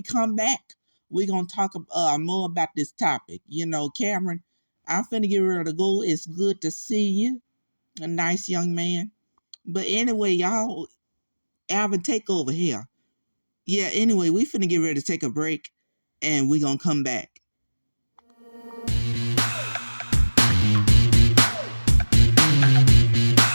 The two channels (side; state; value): both; inverted; correlation -1.00